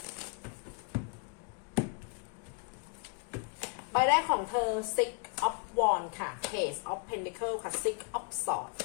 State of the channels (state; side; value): quieter; right; 36.6 dB